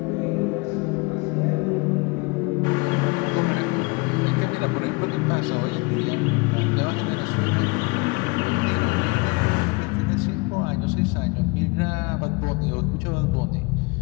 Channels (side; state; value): right; quieter; 27.8 dB